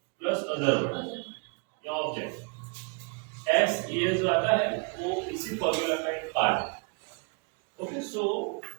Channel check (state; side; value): quieter; left; 33.6 dB